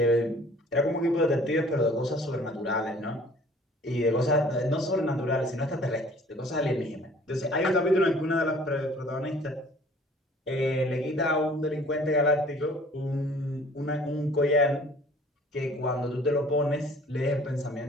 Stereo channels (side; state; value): both; normal; correlation 0.52